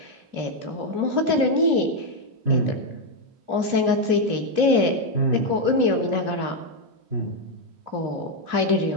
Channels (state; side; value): late; left; 2.8 ms